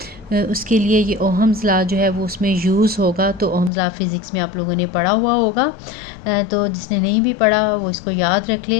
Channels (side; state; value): right; drops out; at 3.7 s